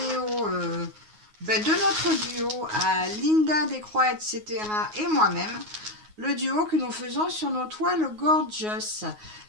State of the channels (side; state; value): left; late; 9.5 ms